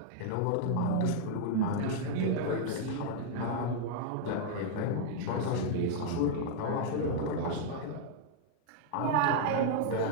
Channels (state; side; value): different; both; correlation -0.01